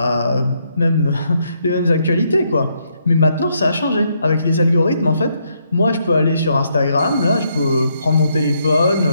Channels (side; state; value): both; inverted; correlation -0.75